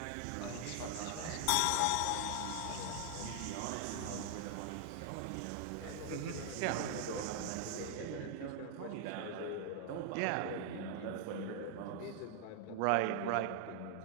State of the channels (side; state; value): both; different; correlation 0.00